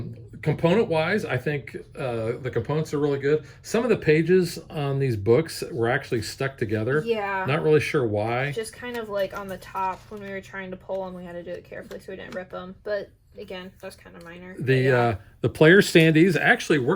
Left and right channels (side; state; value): both; identical; correlation 1.00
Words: component wise, I think the components are really good. Some of the pages on these books were actually stuck together. Yeah. Not really sure why. Just kind of like on the top when we were trying to pull them, we had to do it carefully so we didn't rip them. But again, that's kind of minor. The player standees actually